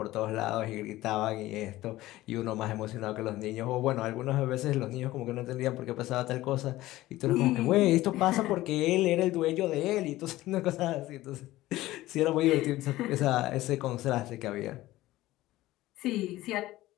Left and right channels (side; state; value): right; quieter; 16.7 dB